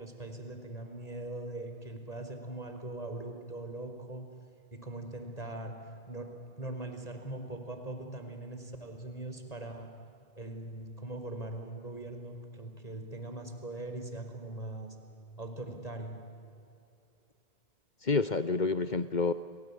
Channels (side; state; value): right; late; 1.8 ms